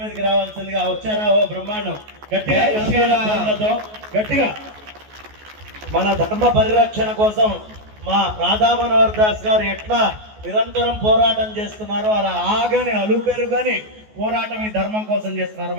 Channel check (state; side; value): late; left; 14 ms